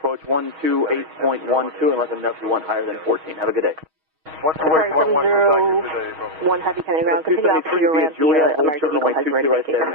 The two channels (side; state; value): left; late; 6.3 ms